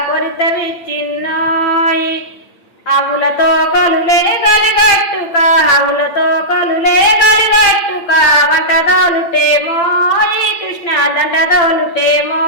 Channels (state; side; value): late; right; 8.8 ms